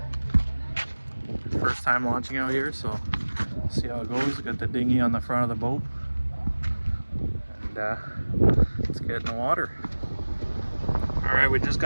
First time launching out here, so see how it goes. Got the dinghy on the front of the boat, and let's get in the water. All right, we just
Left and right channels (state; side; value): inverted; both; correlation -1.00